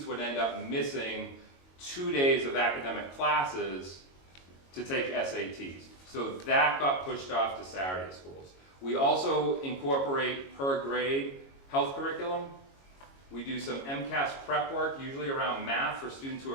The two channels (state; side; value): late; right; 22 ms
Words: would end up missing 2 days of academic classes to take SATs. So that got pushed off to Saturday schools. We also incorporate per grade health curriculum. We do some MCAS prep work, usually around math for students who